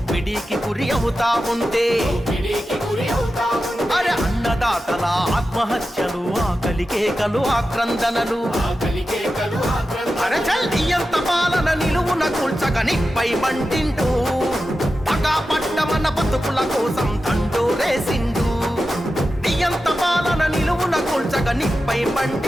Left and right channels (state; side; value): normal; both; correlation 0.92